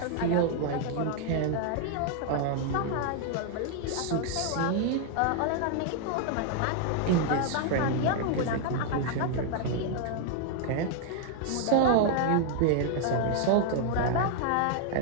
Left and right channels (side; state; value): both; different; correlation 0.00